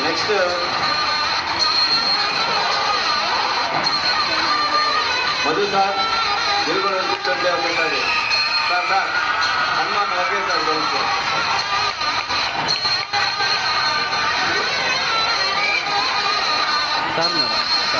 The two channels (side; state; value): both; identical; correlation 1.00